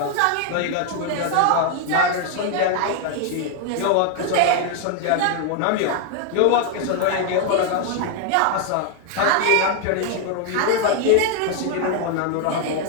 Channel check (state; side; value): different; both; correlation 0.00